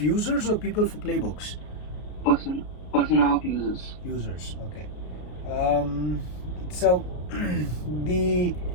or people for playbooks? Persona of users. Users, okay. So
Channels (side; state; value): right; late; 33 ms